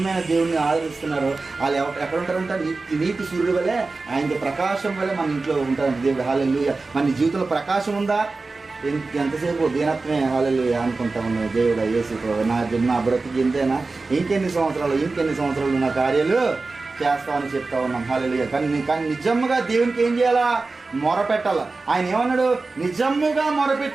దేవుడిని ఆదరిస్తున్నారో వాళ్ళు ఎక్కడ ఉంటారంటే నీతి సూర్యుడు వల్లే, ఆయనకి ప్రకాశం వల్లే మన ఇంట్లో ఉంటారు దేవుడు. హల్లెలూయా. మన జీవితంలో ప్రకాశం ఉందా? ఎంతసేపు దీనత్వమే హల్లెలూయా అనుకుంటా ఉన్నావు. దేవుడా యేసు నా బ్రతికి ఇంతేనా, ఇంకెన్ని సంవత్సరాలు నా కార్యాలు చేస్తామని చెప్తా ఉన్నాం. హల్లెలూయా. కానీ నిజంగా దేవునికి ఏం చేయాలా? మొరపెట్టాల. ఆయన ఏమన్నాడు, నిజముగా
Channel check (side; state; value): left; quieter; 3.7 dB